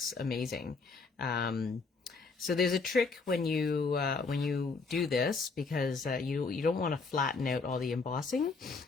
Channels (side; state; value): right; quieter; 4.4 dB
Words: amazing. So there's a trick when you do this, because you don't want to flatten out all the embossing.